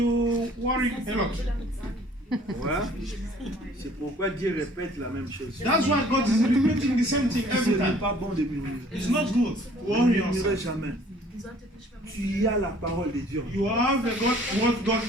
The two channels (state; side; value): normal; both; correlation 0.55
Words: worry a lot. Ouais. C'est pourquoi Dieu répète la même chose. That's why God is repeating the same thing Ce every n'est time. pas bon de murmurer. It's not good. Ne Worry murmurez yourself. jamais. Tu as la parole de Dieu. You have the God, what God